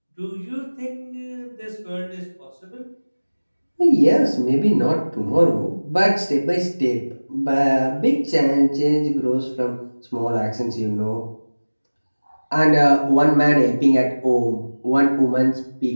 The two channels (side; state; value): both; inverted; correlation -1.00